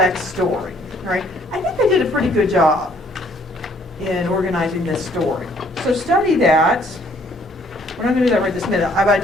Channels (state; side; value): normal; both; correlation 0.63